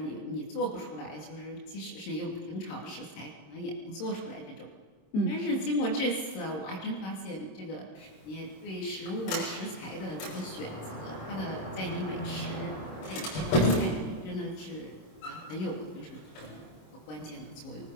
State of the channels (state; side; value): late; right; 26 ms